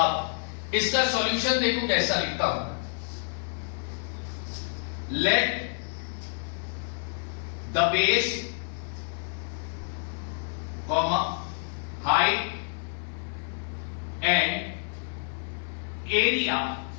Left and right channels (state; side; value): silent; right; digital silence